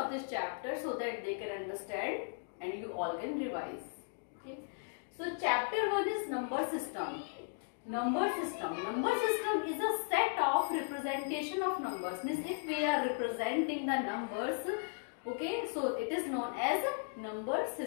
this chapter so that they can understand and you all can revise. Okay, so chapter 1 is number system. Number system. Number system is a set of representation of numbers. Means if we are representing the numbers, okay, so it is known as number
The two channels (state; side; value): silent; right; digital silence